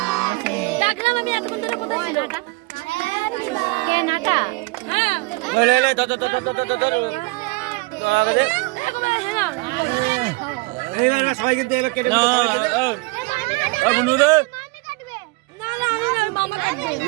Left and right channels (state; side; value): quieter; left; 25.1 dB